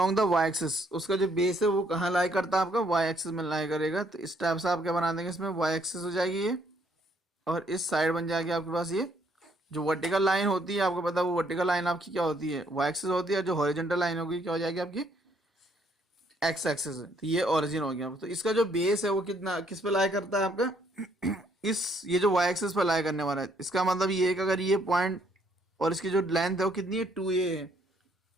the Y axis, उसका जो बेस है वो कहाँ लाई करता है, आपका वाई एक्सिस में लाई करेगा। तो इस टाइप से आप क्या बना देंगे, इसमें वाई एक्सिस हो जाएगी ये और इस साइड बन जाएगी आपके पास ये जो वर्टिकल लाइन होती है, आपको पता है वो वर्टिकल लाइन आपकी क्या होती है, वाई एक्सिस होती है। जो हॉरिजॉन्टल लाइन होगी क्या हो जाएगी आपकी, एक्स एक्सिस है। तो ये ओरिजिन हो गया। तो इसका जो बेस है वो कितना किस पे लाई करता है आपका ये जो वाई एक्सिस पे लाई करने वाला है। इसका मतलब ये है कि अगर ये पॉइंट और इसकी जो लेंथ है वो कितनी है 2a है,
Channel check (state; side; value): normal; both; correlation 0.68